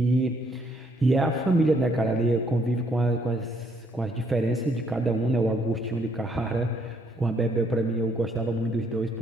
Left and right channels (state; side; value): normal; both; correlation 0.69